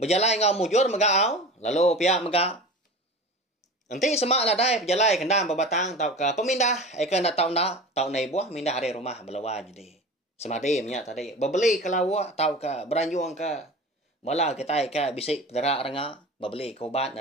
ngau mujur megau lalu pihak mega. Nanti semak lah dai berjalan kendam berbatang tau ke pemindah ikan dah tau nai buah mindah hari rumah belawan jadi. Semadi minyak tadi berbeli ke lawak tau ke beranjung ke bala kita ke bisik pedarak renga berbeli ke ubat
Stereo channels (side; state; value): both; normal; correlation 0.34